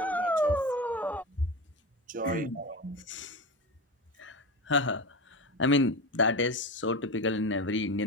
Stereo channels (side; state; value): both; normal; correlation 0.22